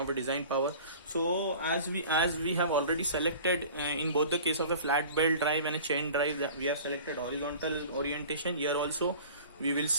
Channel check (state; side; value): inverted; both; correlation -0.42